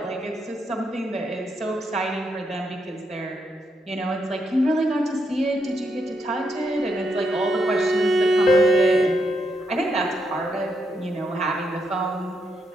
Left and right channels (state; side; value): normal; both; correlation 0.79